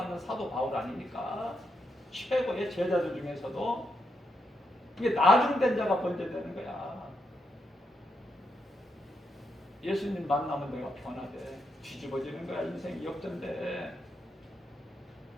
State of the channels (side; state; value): both; normal; correlation 0.81